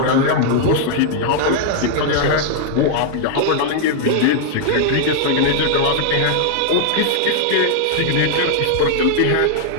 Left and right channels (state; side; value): different; both; correlation 0.00